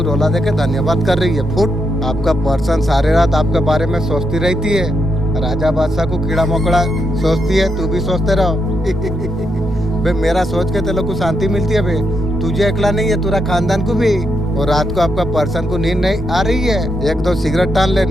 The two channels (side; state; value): both; normal; correlation 0.81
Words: रोला देके धन्यवाद कर रही है। फुट। आपका पर्सन सारे रात आपके बारे में सोचती रहती है। राजा बादशाह को कीड़ा मकोड़ा सोचती है, तू भी सोचते रहो। बे मेरा सोच के तेरे को शांति मिलती है बे, तुझे अकेला नहीं है, पूरा खानदान को भी। और रात को आपका पर्सन को नींद नहीं आ रही है, एक दो सिगरेट टान ले,